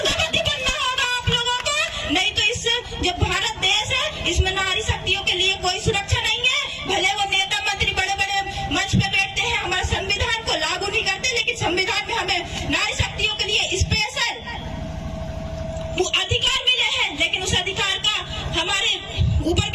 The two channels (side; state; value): both; identical; correlation 1.00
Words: बनना होगा आप लोगों को, नहीं तो इस जो भारत देश है इसमें नारी शक्तियों के लिए कोई सुरक्षा नहीं है। भले वो नेता मंत्री बड़े बड़े मंच पे बैठते हैं, हमारे संविधान को लागू नहीं करते, लेकिन संविधान में हमें नारी शक्तियों के लिए स्पेशल अधिकार मिले हैं, लेकिन उस अधिकार का हमारे ऊपर